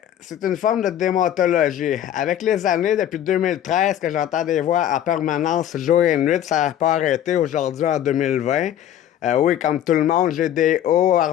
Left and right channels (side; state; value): right; quieter; 10.9 dB